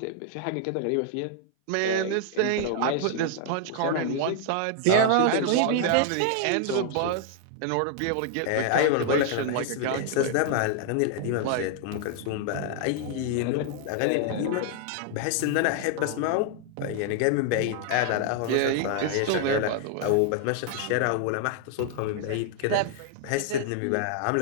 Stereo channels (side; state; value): both; different; correlation 0.00